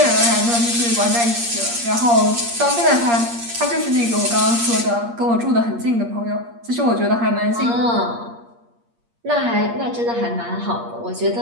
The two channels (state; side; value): late; left; 8.5 ms